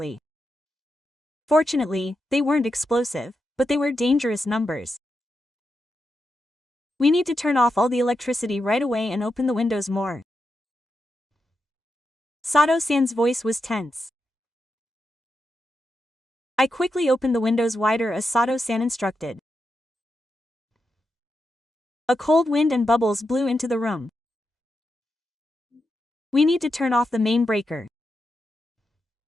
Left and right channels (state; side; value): normal; both; correlation 0.86